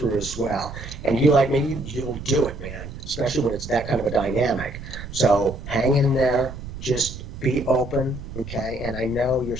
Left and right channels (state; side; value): noise; right; rumble, 11 dB below the sound